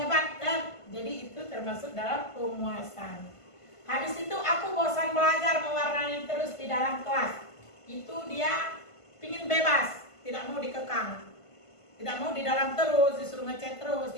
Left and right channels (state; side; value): late; right; 1.5 ms